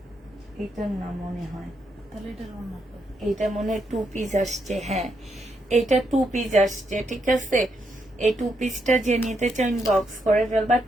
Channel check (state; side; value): normal; both; correlation 0.79